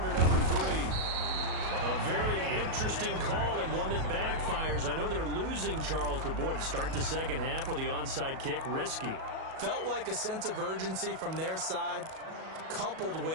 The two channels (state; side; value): late; left; 37 ms